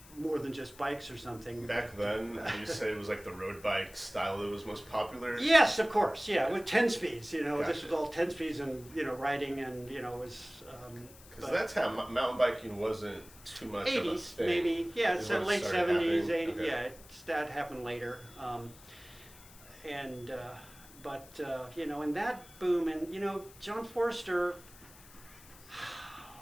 more than just bikes or something. Back then, you say it was like the road bike style that was most popular? Yes, of course. Yeah, with 10 speeds. Gotcha. This was all 10 speeds and, riding and, was... Because that time, mountain biking wasn't too much 80s, of a thing. Maybe. Yeah, it's late 70s, happening. 80s. Okay. Yeah, that happened later. And that boom, and, John Forster,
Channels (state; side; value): noise; left; hiss, 21 dB below the sound